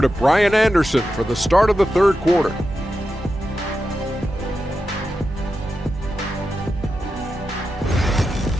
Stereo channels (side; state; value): both; normal; correlation 0.89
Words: to Brian Anderson for the start of the third quarter.